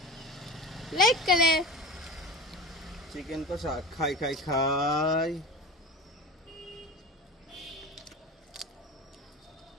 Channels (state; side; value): normal; both; correlation 0.30